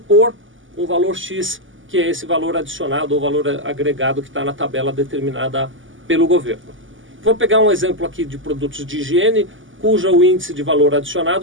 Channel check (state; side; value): late; left; 0.57 ms